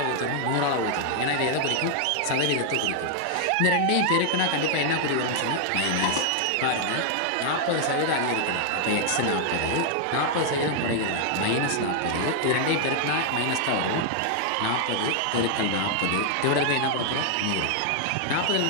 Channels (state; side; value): different; both; correlation 0.00